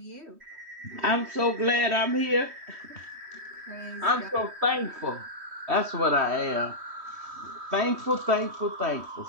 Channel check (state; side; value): late; left; 3.1 ms